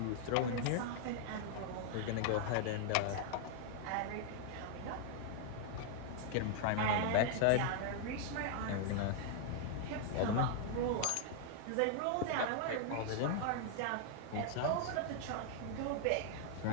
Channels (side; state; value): both; different; correlation 0.00